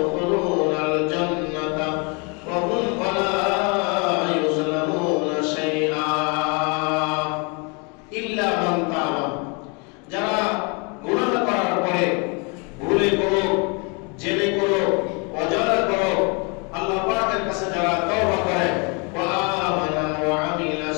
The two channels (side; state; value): right; quieter; 32.6 dB